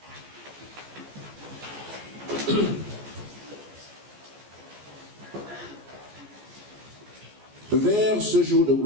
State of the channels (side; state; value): left; late; 14 ms